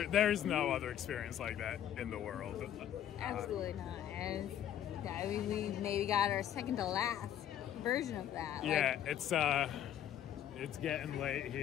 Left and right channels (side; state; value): right; quieter; 10.7 dB